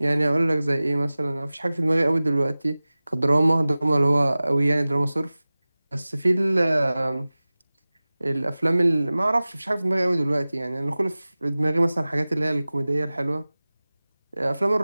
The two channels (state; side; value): inverted; both; correlation -0.98